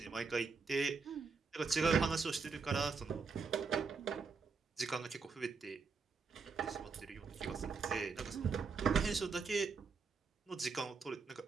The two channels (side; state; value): left; quieter; 4.9 dB